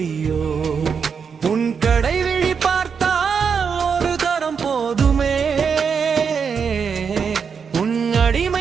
உன் கடை விழி பார்த்தால் ஒரு தரம் போதுமே உன்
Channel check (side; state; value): left; quieter; 6.3 dB